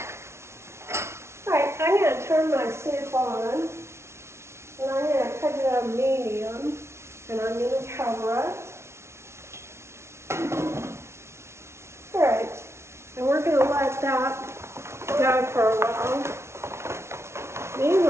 Alright, I'm going to turn my soup on, and I'm going to put it on medium, and I'm going to cover it. Alright, and we're going to let that go for a while.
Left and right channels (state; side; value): late; left; 0.13 ms